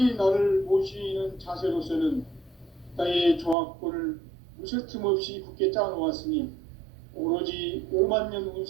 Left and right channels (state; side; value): drops out; left; at 3.6 s